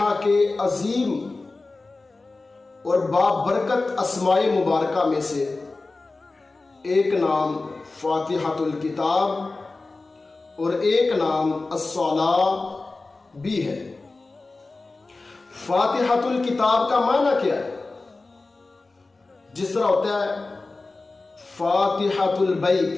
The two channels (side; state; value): right; quieter; 3.5 dB